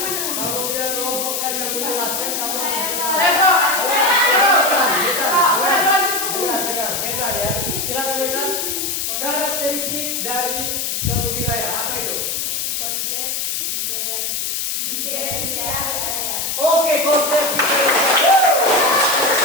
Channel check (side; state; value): left; noise; hiss, 1 dB below the sound